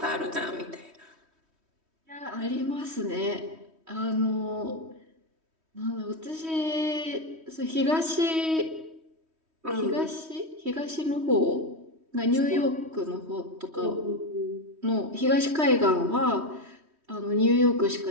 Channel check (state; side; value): late; left; 3.1 ms